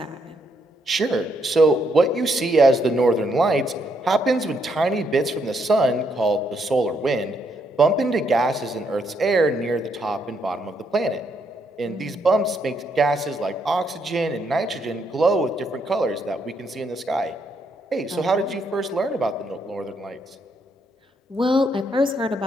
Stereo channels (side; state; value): both; normal; correlation 0.75